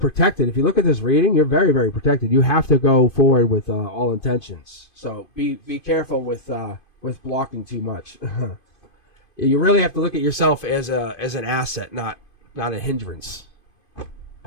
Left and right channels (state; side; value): late; right; 2.5 ms